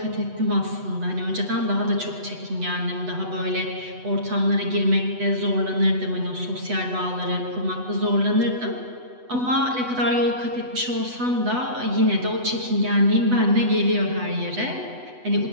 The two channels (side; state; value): left; late; 8.0 ms